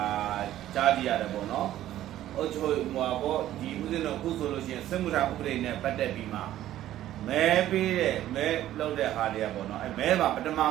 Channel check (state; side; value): quieter; left; 13.1 dB